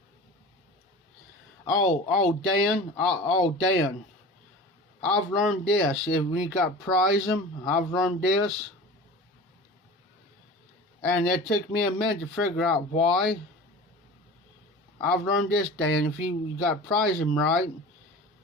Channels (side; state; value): both; normal; correlation 0.36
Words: Dan, I've learned this. If we got prize them, I've learned this. And it took me a minute to figure out why. I've learned this, Dan. If you got prize them right,